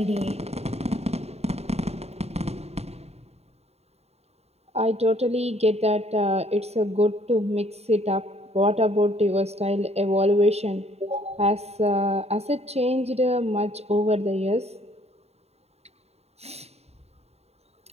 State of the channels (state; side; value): late; left; 0.30 ms